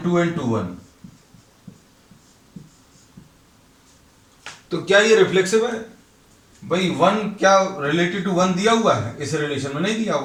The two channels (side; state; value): both; identical; correlation 1.00